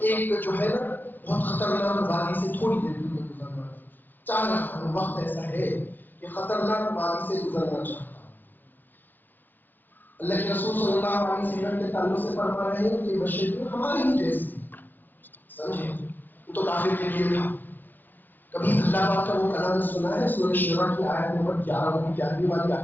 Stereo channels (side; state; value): right; late; 0.089 ms